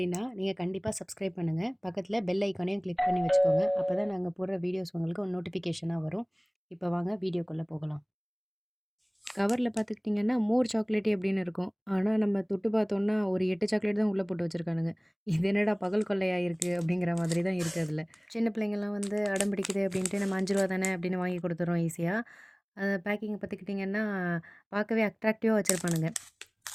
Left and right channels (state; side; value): identical; both; correlation 1.00